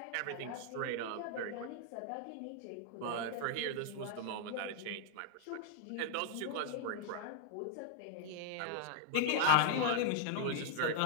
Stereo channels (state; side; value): different; both; correlation -0.01